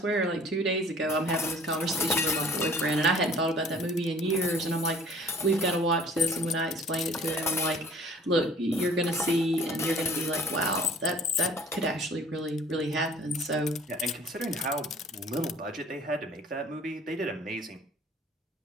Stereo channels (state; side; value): normal; both; correlation 0.51